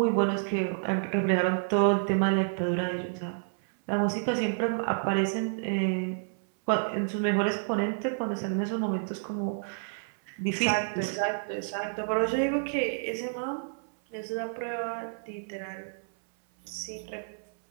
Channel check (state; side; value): silent; left; 58 dB below the other